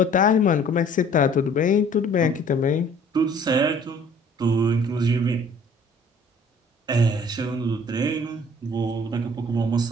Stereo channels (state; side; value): normal; both; correlation 0.53